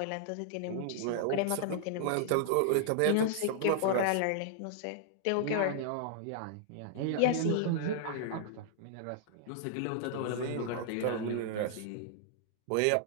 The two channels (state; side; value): different; both; correlation -0.01